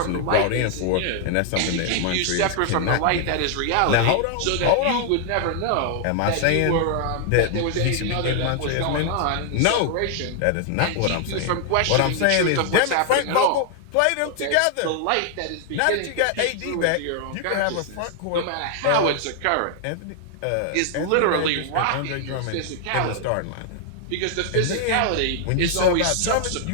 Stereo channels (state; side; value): different; both; correlation 0.00